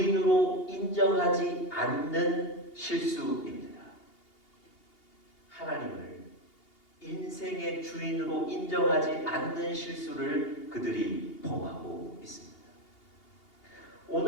인정하지 않는 실수입니다. 하나님을 인생의 주인으로 인정하지 않는 실수를 그들이 범하고 있습니다.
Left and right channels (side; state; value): right; late; 2.8 ms